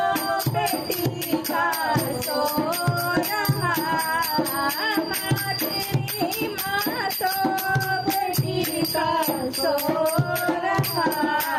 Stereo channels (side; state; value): both; identical; correlation 1.00